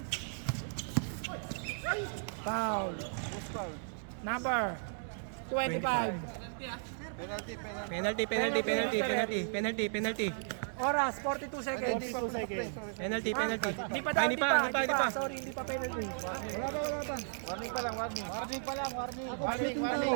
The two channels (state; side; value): silent; left; digital silence